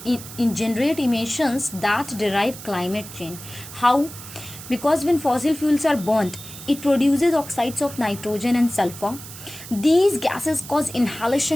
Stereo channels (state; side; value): noise; right; hiss, 14 dB below the sound